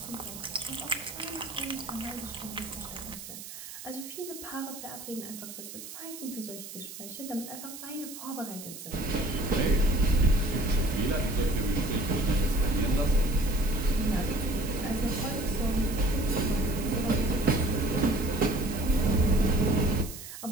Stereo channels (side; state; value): right; noise; hiss, 12 dB below the sound